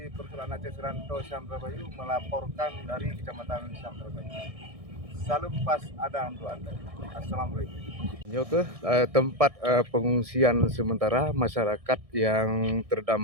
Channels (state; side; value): late; left; 1.6 ms